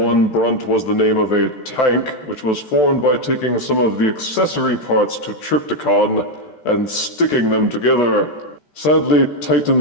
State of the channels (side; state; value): right; late; 14 ms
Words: 1, Brunt was the name of a tank, which was formed by taking some of the accessory parts to Trypticon and sticking them together. Sadly,